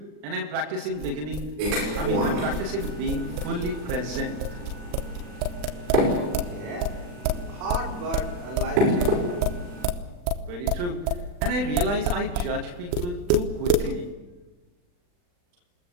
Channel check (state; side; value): late; left; 40 ms